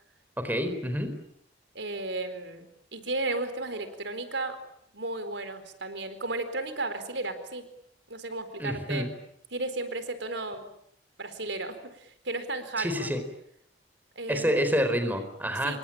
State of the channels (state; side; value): normal; both; correlation 0.26